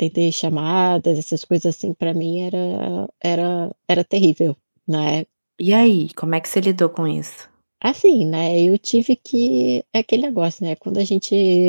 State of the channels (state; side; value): inverted; both; correlation -1.00